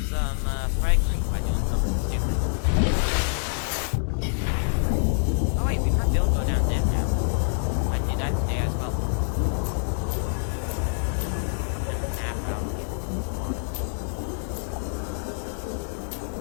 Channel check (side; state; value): right; silent; digital silence